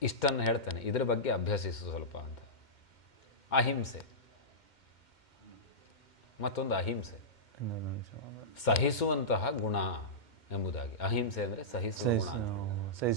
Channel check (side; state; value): right; late; 2.1 ms